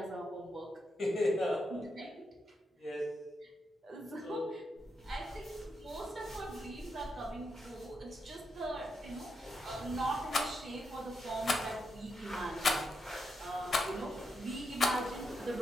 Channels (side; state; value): both; normal; correlation 0.83